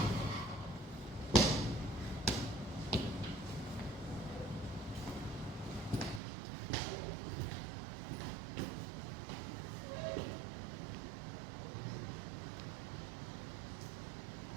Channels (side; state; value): left; drops out; at 6.2 s